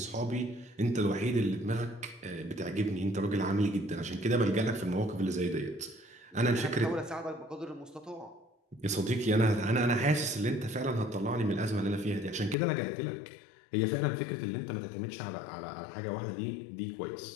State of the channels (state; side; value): drops out; right; at 12.6 s